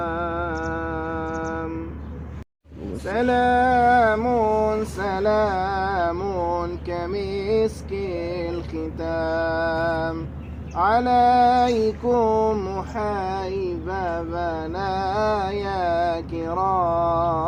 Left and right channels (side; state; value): both; identical; correlation 1.00